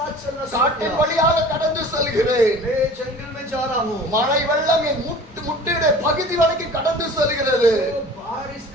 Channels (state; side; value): normal; both; correlation 0.43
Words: चलना शुरू காட்டின் किया। வழியாக கடந்து செல்கிறேன். मैं जंगल में जा रहा हूँ, மழை வெள்ளம் என் முட்டியுடைய பகுதி வரைக்கும் கடந்து செல்கிறது. तो बारिश